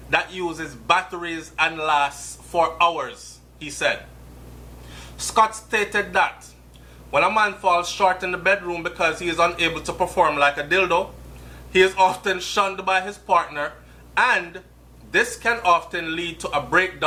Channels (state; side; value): identical; both; correlation 1.00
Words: that uses batteries and lasts for hours, he said. Scott stated that when a man falls short in the bedroom because he is unable to perform like a dildo, he is often shunned by his partner, and this can often lead to a